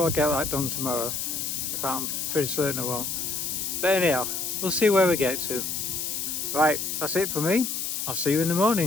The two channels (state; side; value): noise; left; hiss, 2 dB below the sound